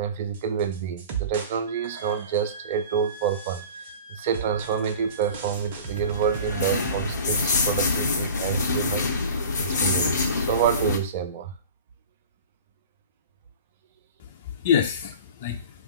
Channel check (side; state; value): both; inverted; correlation -0.39